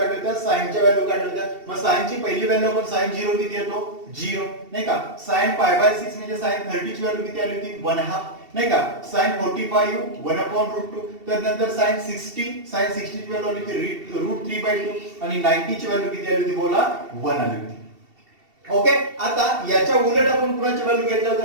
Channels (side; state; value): left; late; 2.7 ms